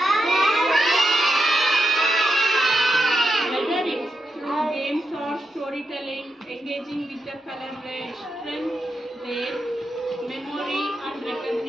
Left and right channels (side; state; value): both; normal; correlation 0.86